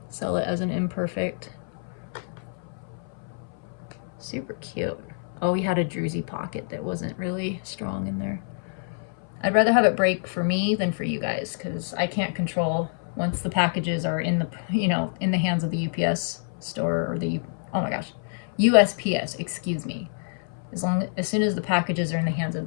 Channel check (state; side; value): silent; right; 58 dB below the other